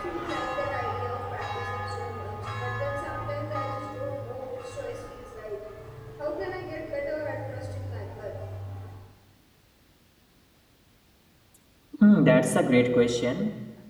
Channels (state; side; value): identical; both; correlation 1.00